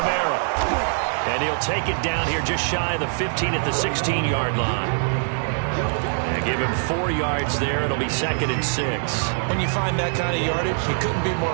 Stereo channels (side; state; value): left; silent; 63 dB below the other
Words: And he'll take it down here just shy of the 15 at the 16-yard line. And give him 4 yards there. It'll be 2nd and 6. When you find that kind of yardage, you couldn't be